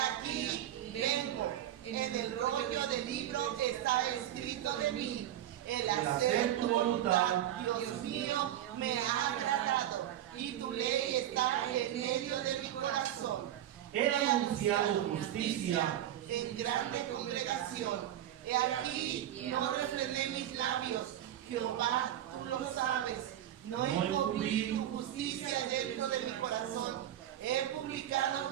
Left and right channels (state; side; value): quieter; left; 12.0 dB